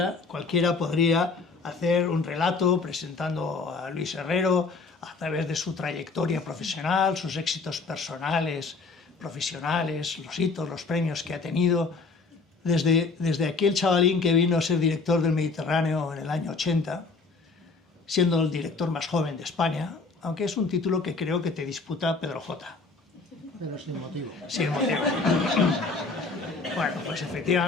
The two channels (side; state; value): right; quieter; 4.1 dB